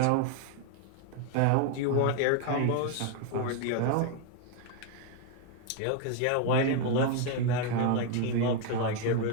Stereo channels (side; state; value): both; different; correlation 0.01